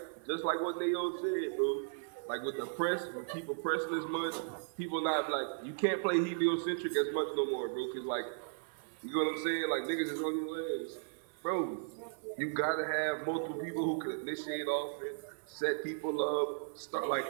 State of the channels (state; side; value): silent; left; digital silence